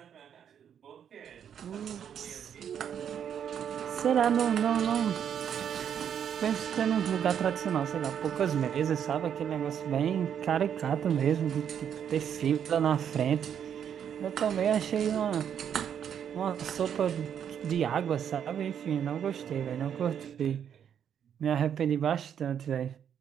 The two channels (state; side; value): quieter; left; 8.6 dB